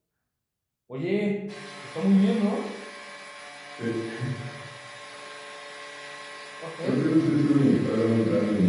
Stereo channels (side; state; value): both; identical; correlation 1.00